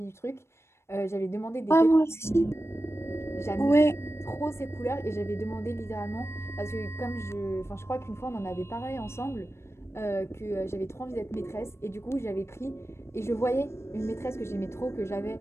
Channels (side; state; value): right; late; 0.13 ms